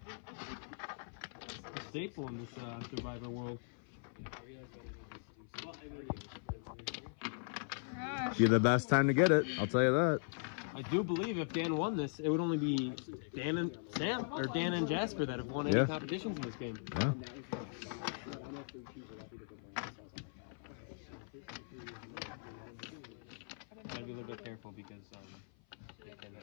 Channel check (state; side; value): silent; right; 51 dB below the other